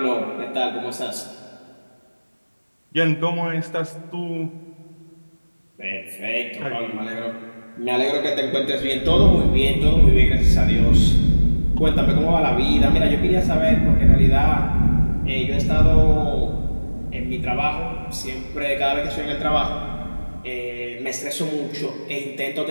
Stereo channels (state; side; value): inverted; both; correlation -1.00